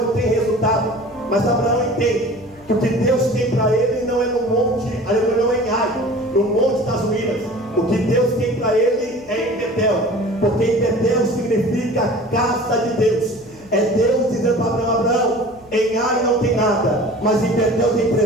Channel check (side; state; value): right; noise; hum, 28 dB below the sound